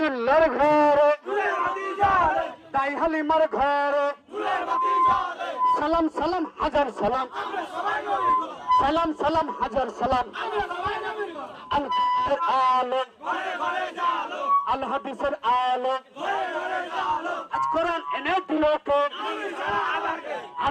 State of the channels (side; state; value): both; identical; correlation 1.00